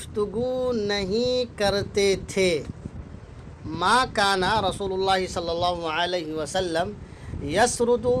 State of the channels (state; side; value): identical; both; correlation 1.00